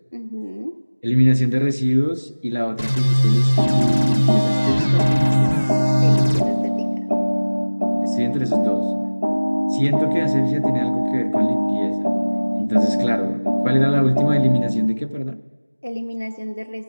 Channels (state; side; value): inverted; both; correlation -1.00